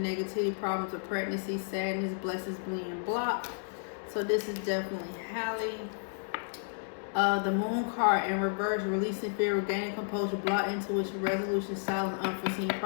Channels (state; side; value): silent; right; 56 dB below the other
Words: negativity, problems with pregnancy, sadness, blessings being blocked. So this is definitely Halle. The Moon card in reverse, releasing fear, regaining composure, block intuition, resolution, silence, unforeseen